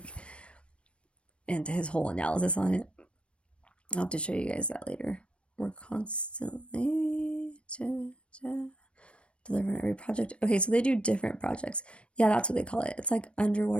into his whole analysis on it. I'll have to show you guys that later. We're constantly delivering every project. Okay, so they do different projects. Yeah, that's what they call it. It's like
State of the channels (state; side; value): late; right; 0.059 ms